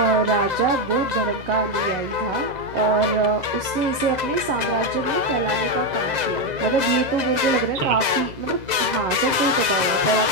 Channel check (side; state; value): left; late; 7.6 ms